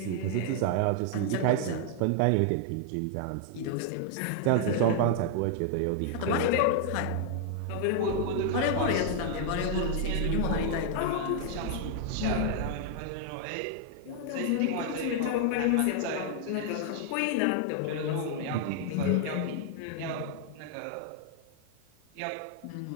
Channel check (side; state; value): both; different; correlation 0.00